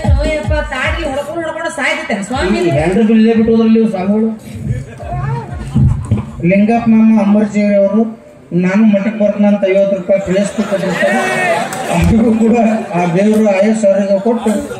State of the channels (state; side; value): identical; both; correlation 1.00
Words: ತಾಡಿ ಹೊಡ್ಕೊಂಡು ಸಾಯ್ತೇನೆ ಸ್ವಾಮಿ ಹೆಂಡ್ರು ಇಲ್ಲೇ ಬಿಟ್ಟು ಹೋದ್ರಲ್ಲಿ ಸ್ವಾಮಿಗಳು ಲಿಂಗಪ್ಪ ಮಾಮ ಅಂಬರ್ಜಿಯವ್ರಿ ಅವರು ನಾನು ಮಠಕ್ಕೆ ಬರ್ತಾನಂತ 50 ರೂಪಾಯಿ ಪ್ಲೇಸ್ಟಿಕ್ ಕೊಟ್ಟಿರ್ತಾರೆ ಅವ್ರಿಗೂ ಕೂಡ ಆ ದೇವರು ಆಯಸ್ ಅವ್ರಿಗೆ ಕೊಟ್ಟು